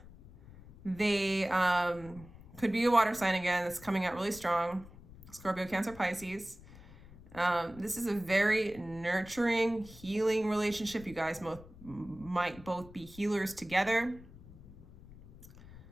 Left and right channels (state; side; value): noise; left; rumble, 19 dB below the sound